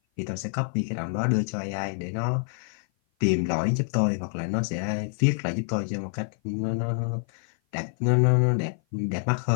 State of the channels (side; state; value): right; silent; 56 dB below the other